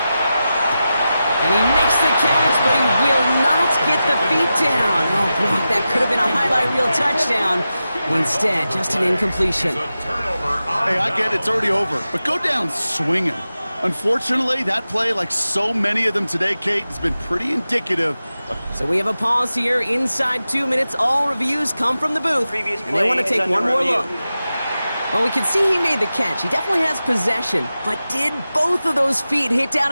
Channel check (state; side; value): inverted; both; correlation -0.93